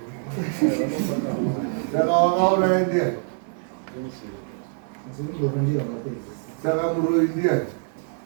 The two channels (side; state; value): left; silent; 55 dB below the other